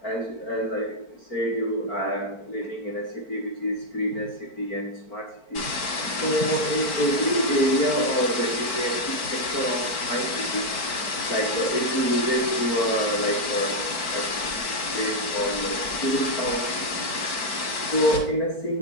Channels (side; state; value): right; late; 4.5 ms